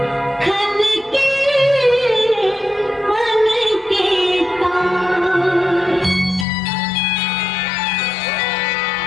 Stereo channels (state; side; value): drops out; right; at 6.5 s